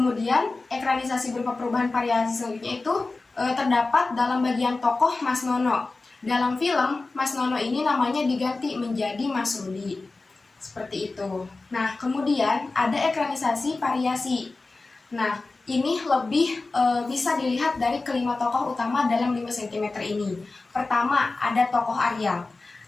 ekranisasi berupa perubahan variasi selanjutnya itu terdapat dalam bagian tokoh Mas Nono. Dalam film, Mas Nono ini namanya diganti menjadi Mas Rudi. Seperti itu. Nah, kemudian ada ekranisasi variasi. Nah, ini lebih bisa dilihat dari kelima tokoh utama dalam 5 cm ini. Pertama, ada tokoh Ariel.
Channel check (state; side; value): quieter; right; 3.5 dB